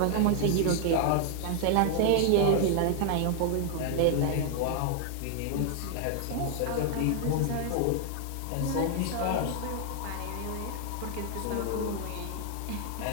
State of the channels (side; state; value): both; different; correlation 0.00